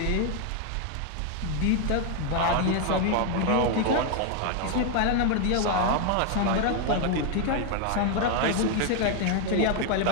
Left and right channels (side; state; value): both; different; correlation 0.01